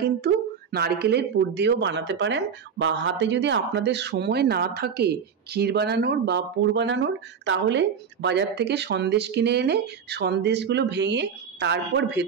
কিন্তু নারকেলের পুর দিয়েও বানাতে পারেন, বা হাতে যদি আপনাদের সময় না থাকে ক্ষীর বানানোর বা পুর বানানোর, তাহলে বাজার থেকে সন্দেশ কিনে এনে সন্দেশগুলো ভেঙে তারপর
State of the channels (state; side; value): quieter; left; 6.9 dB